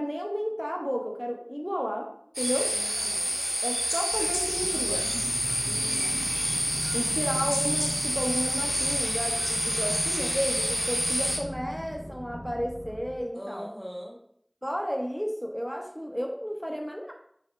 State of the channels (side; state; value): both; identical; correlation 1.00